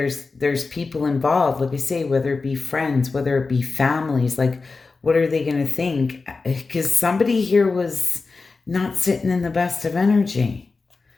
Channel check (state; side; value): quieter; right; 4.1 dB